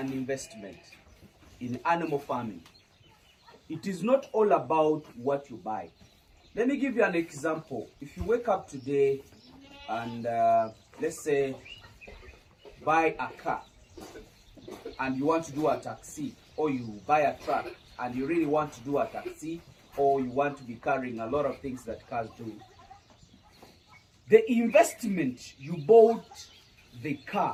investment in animal farming, it is not all about what you buy. Let me give you an example. If you wake up today and let's say buy a car and you want to do a taxi, or you buy a truck and you really want to do a taxi, or you want to be carrying a lot of things that cars do, the investment you bought the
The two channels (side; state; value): both; identical; correlation 1.00